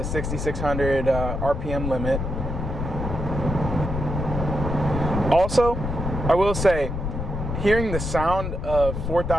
6,600 RPM limit. Also, I will say, hearing the sound of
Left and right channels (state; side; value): noise; left; rumble, 3 dB below the sound